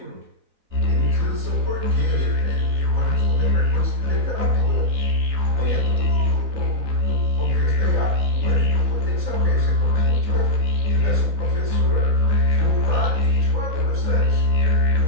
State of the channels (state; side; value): late; left; 4.0 ms